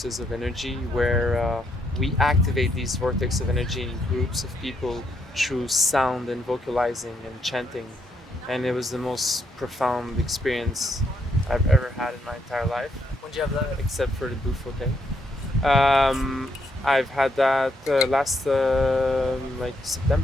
of energy where we activate these vortex of energy in groups of people through sound and vocalizing and chanting, and it was the most profound experience I've ever had in my entire life, When did you have that? except for the Bufo thing. I've had that last like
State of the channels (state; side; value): normal; both; correlation 0.76